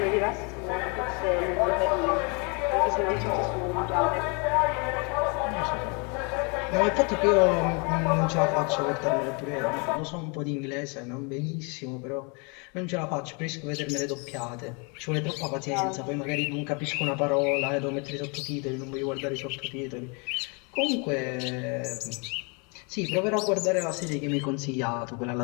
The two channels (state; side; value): quieter; right; 33.2 dB